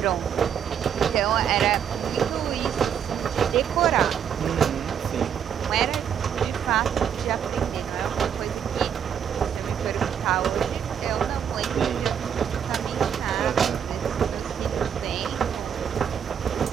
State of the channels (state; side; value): quieter; left; 8.4 dB